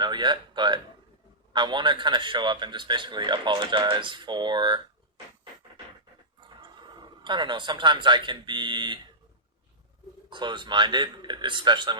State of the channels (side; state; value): both; normal; correlation -0.17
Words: yet, but I want to kind of show up and just basically apologize for, I don't know, sometimes I can be closed-minded, especially